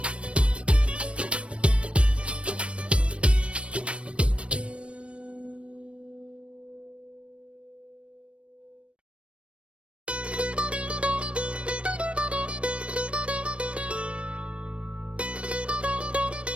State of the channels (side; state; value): left; late; 0.060 ms